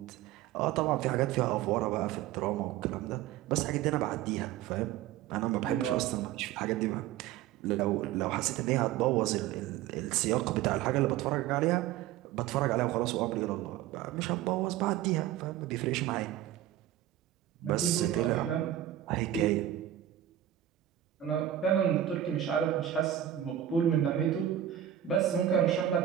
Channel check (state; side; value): quieter; left; 11.9 dB